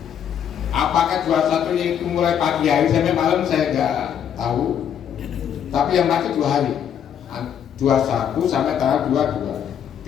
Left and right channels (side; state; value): right; quieter; 8.9 dB